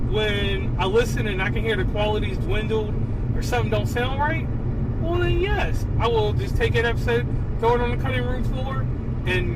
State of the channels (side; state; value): both; identical; correlation 1.00